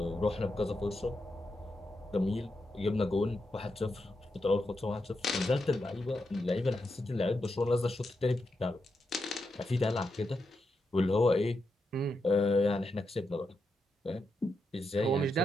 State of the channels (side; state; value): both; normal; correlation 0.85